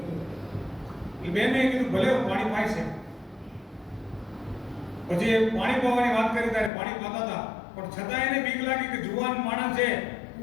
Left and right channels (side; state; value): right; drops out; at 6.7 s